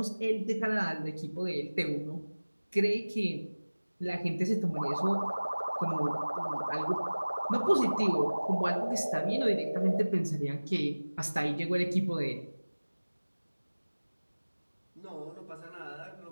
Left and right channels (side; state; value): both; inverted; correlation -1.00